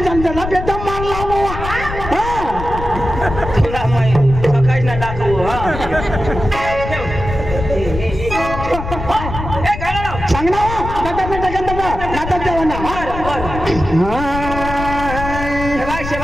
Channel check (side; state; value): left; noise; rumble, 7 dB below the sound